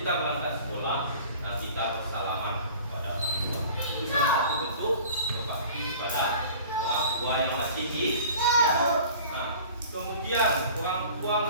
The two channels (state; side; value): inverted; both; correlation -0.44